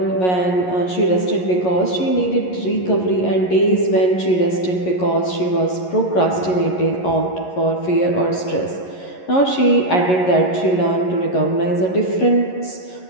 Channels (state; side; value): late; right; 11 ms